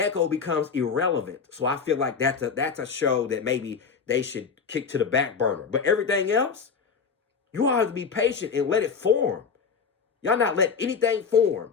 becomes irrelevant. So I feel like that's a show that maybe they should kick to the back burner. But everything else, you all have to be patient and let it form. Y'all not let anything form.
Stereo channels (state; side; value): quieter; right; 5.8 dB